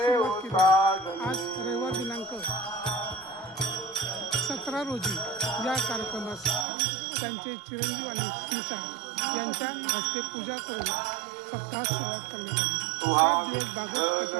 केली. आज रविवार दिनांक 17 रोजी या कार्यक्रमास त्यांचे चिरंजीव आणि स्नुषा यांच्या हस्ते पूजा करून सप्ताहास सुरुवात करण्यात आली. 7 दिवस भागवत कथा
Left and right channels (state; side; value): drops out; left; at 6.7 s